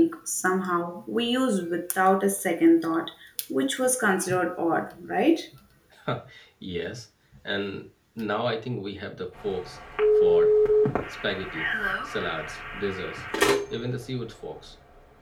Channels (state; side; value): identical; both; correlation 1.00